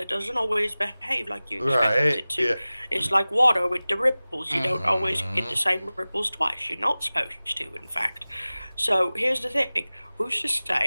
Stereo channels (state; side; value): inverted; both; correlation -0.98